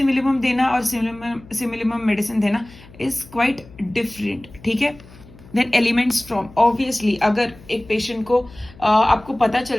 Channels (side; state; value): left; noise; hum, 21 dB below the sound